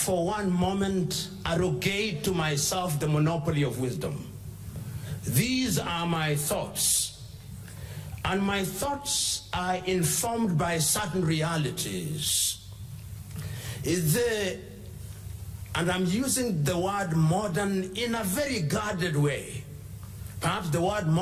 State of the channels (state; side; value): identical; both; correlation 1.00